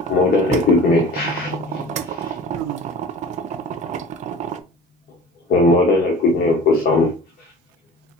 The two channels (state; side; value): normal; both; correlation 0.42